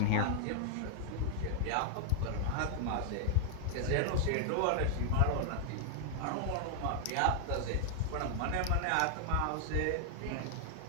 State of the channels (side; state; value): both; different; correlation 0.00